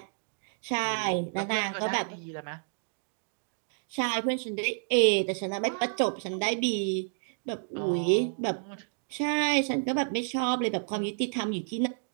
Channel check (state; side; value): silent; left; digital silence